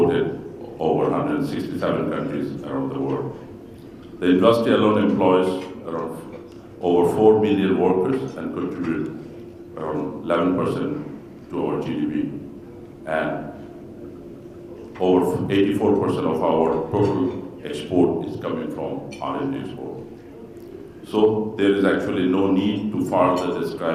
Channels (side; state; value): both; identical; correlation 1.00